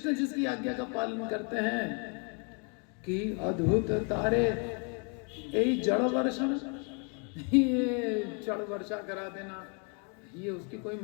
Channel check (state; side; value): quieter; right; 36.3 dB